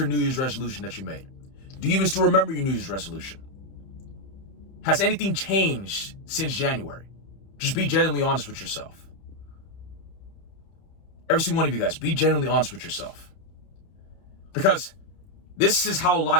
New Year's resolution that you made? Do you even still remember your New Year's resolution? Has anything changed since January? Just be genuinely honest with yourself. Every single one of you guys, be genuinely honest with yourself. Because this is how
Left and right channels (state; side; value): late; right; 31 ms